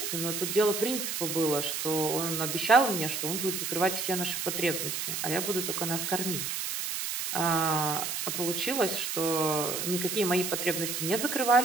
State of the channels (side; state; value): right; noise; hiss, 3 dB below the sound